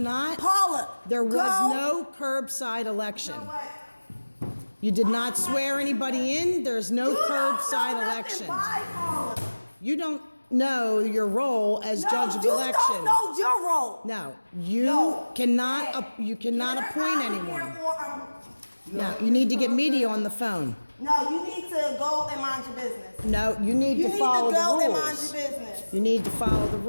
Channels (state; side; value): inverted; both; correlation -1.00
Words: Paula, There was go. no curbside election. You know what? You did not swear anybody in. There's no You don't curbside know nothing. election. Bye, Paula. You don't know your role as No, judge of you election. don't know your role. No, you No. cannot. Hey, You cannot get her appoint out of anyone. here or No, you need to get media on the phone. no, you need to go and mind your business. No, you need You to need follow to go the and mind rules. your business. You need to follow the